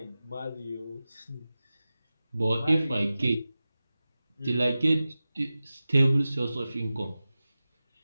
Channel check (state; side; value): inverted; both; correlation -0.95